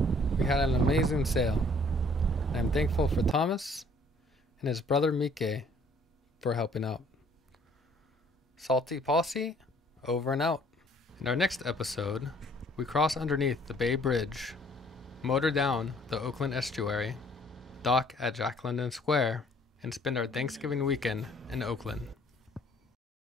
We had an amazing sail. I'm thankful for Thomas and his brother Mike for helping out. Salty Posse, over and out. In our next episode, we cross underneath the Bay Bridge, motor down the Oakland estuary, dock at Jack London Square, and spend our Thanksgiving weekend in Oakland.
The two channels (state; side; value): normal; both; correlation 0.59